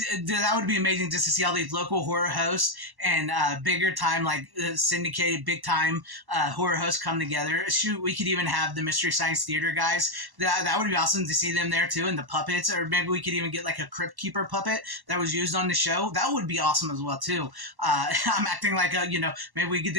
would be amazing just to see all these local horror hosts and bigger time, like syndicated, big time horror hosts come together. Shoot, we could even have the Mystery Science Theater guys. That would be awesome to see them there too, and the puppets, or maybe we could even get like a Crypt Keeper puppet that was used on the show. That would be awesome as well too. I'm acting like maybe we get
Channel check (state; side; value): late; left; 1.1 ms